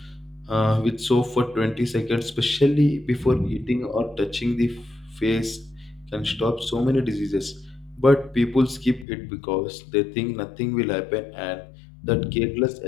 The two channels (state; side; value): drops out; right; at 9.1 s